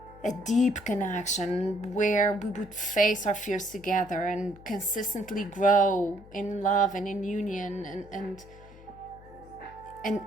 a deep connection where we would face our fears together and consistently grow in love and in union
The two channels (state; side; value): noise; left; hum, 21 dB below the sound